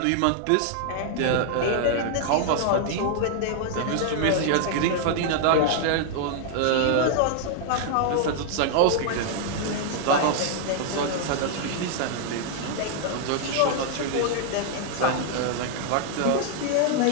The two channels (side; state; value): both; different; correlation 0.00